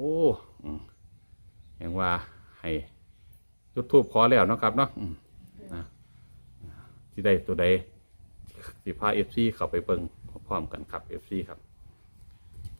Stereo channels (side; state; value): both; inverted; correlation -1.00